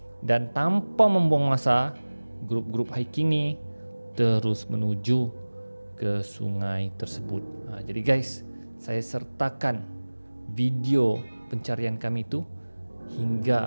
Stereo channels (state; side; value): inverted; both; correlation -1.00